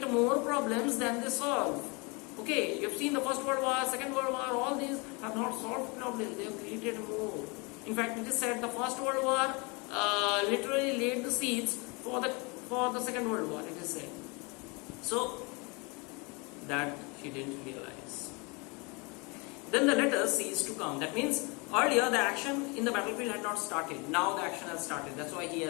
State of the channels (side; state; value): right; quieter; 29.6 dB